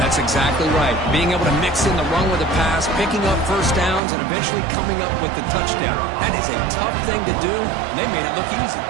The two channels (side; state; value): left; drops out; at 4.0 s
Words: exactly right. Being able to mix in the run with the pass, picking up first downs, and eventually coming up with the touchdown. That is a tough thing to do, and they made it look easy.